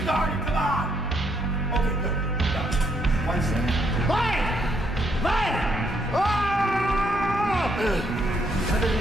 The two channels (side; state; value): both; normal; correlation 0.73